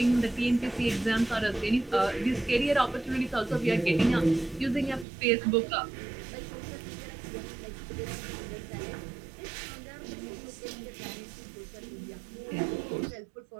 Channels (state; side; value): drops out; left; at 5.1 s